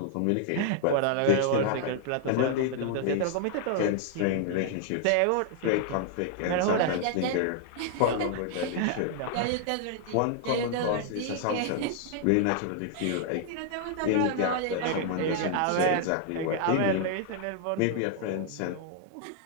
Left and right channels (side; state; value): both; different; correlation 0.00